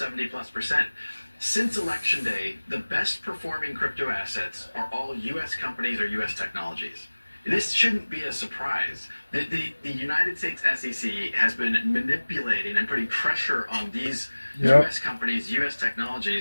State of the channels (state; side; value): inverted; both; correlation -1.00